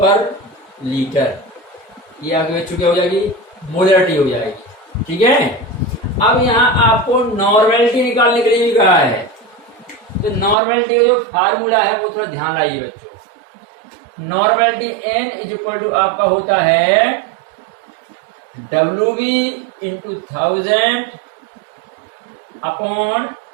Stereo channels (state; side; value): drops out; left; at 10.6 s